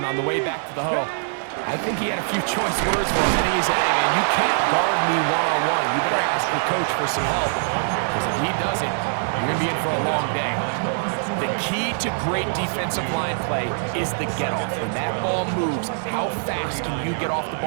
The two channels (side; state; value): left; silent; digital silence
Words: on the way back to the huddle, I think he had a few choice words for him, and he said, hey, man, you can't guard me one-on-one. You better ask your coach for some help, because if he doesn't, you're going to be in for a long day. The key to great defensive line play is the get-off. When that ball moves, how fast can you get off the